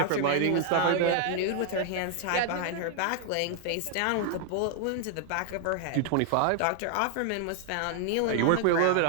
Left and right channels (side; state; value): both; different; correlation 0.00